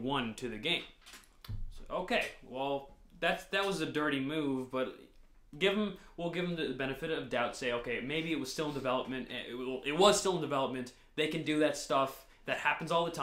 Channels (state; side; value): identical; both; correlation 1.00